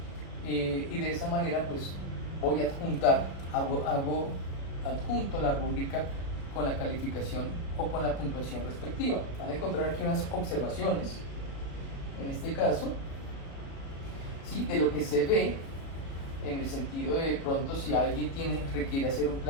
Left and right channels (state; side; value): late; right; 36 ms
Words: y de esa manera pues voy a adjunto la rúbrica con la calificación o con la puntuación respectiva. Van a encontrar aquí unas observaciones, en este caso, ¿sí?, de lo que se ve, en el sentido de pronto si alguien requiere hacer un